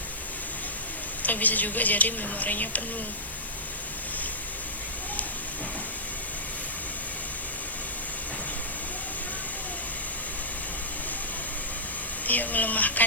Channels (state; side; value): noise; left; hiss, 11 dB below the sound